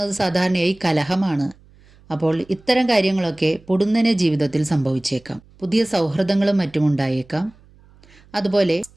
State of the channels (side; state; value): right; noise; hum, 28 dB below the sound